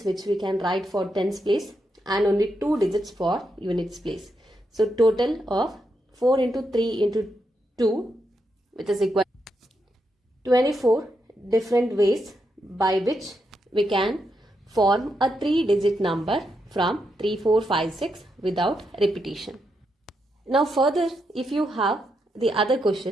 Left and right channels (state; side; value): normal; both; correlation 0.82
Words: which we can write for tens place and only 2 digits for units place. So total of 4 into 3 into 2, which is equal to 24 different ways by which we can form a 3-digit number from 3, 4, 5, 6 without repetition. Now further, if you have the other